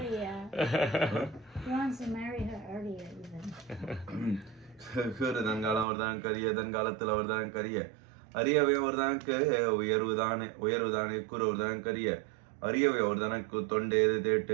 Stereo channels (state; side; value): drops out; left; at 5.9 s